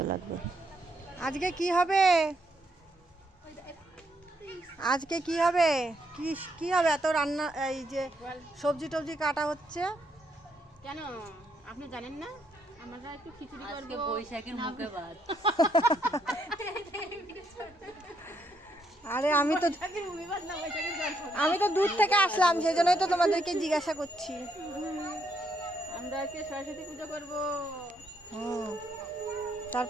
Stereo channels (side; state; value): both; normal; correlation 0.75